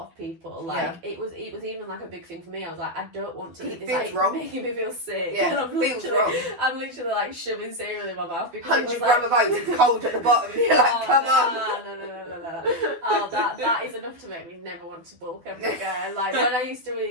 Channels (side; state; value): left; late; 12 ms